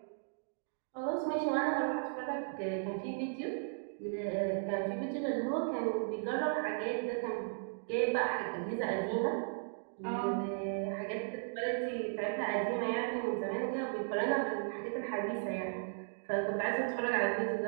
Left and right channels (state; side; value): silent; left; digital silence